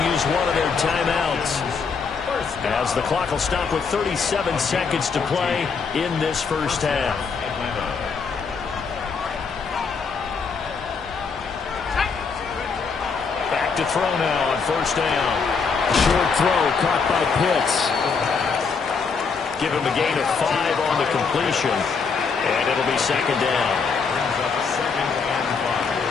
use one of their timeouts as the clock will stop with 37 seconds to play in this first half. Back to throw now on 1st down. Short throw caught by Pitts. Give him a gain of 5 on the completion, and it'll be 2nd down.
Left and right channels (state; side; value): quieter; right; 5.3 dB